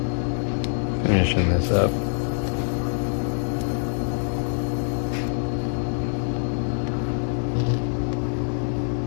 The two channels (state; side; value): silent; right; digital silence